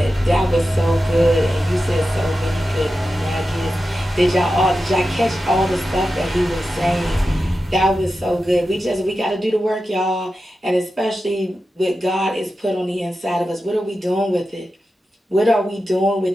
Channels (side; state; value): both; normal; correlation 0.91